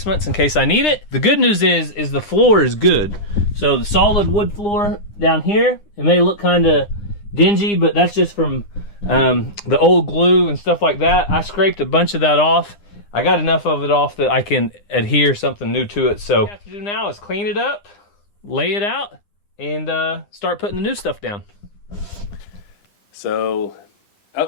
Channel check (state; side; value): late; right; 9.8 ms